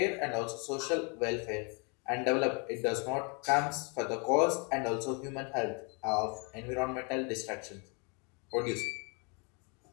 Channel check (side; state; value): right; quieter; 34.1 dB